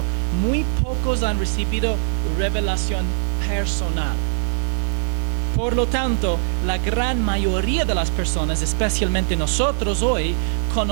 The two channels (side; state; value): left; silent; digital silence